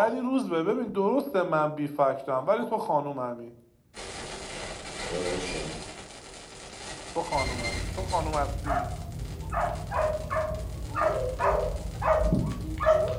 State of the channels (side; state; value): both; identical; correlation 1.00